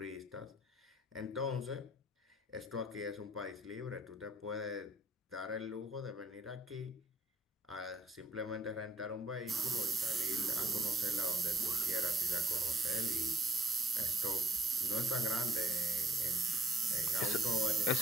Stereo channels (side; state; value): both; normal; correlation 0.63